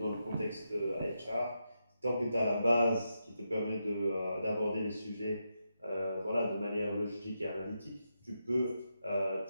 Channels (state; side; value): inverted; both; correlation -0.85